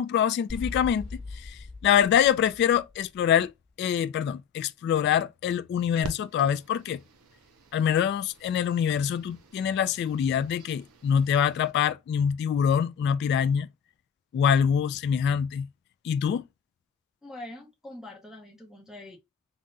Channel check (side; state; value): right; quieter; 8.1 dB